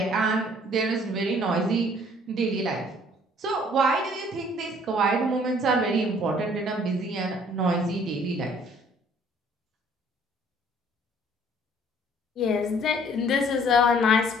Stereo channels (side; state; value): both; normal; correlation 0.57